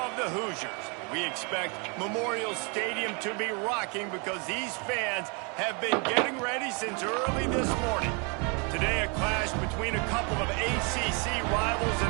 the Hoosiers. We expect Memorial Stadium to be rocking because these fans have been getting ready since early this morning. Today, a clash between a couple of ACC rivals in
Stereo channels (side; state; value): left; quieter; 33.6 dB